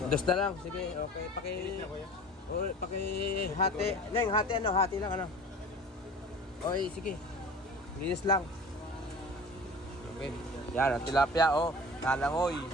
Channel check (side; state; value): both; normal; correlation 0.40